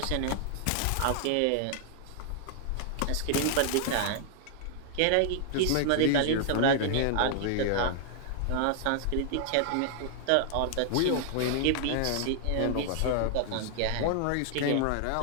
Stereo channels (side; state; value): both; different; correlation -0.01